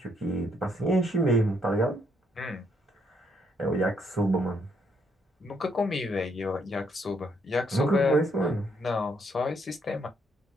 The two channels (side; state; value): both; normal; correlation 0.73